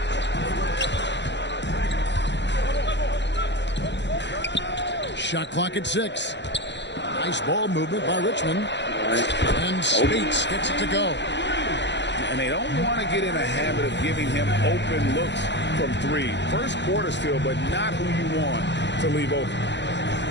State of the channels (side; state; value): right; late; 0.52 ms